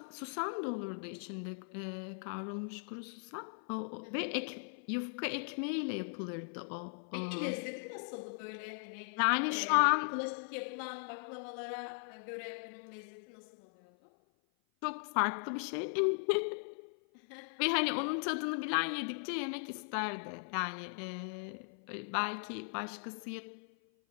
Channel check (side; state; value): right; silent; 52 dB below the other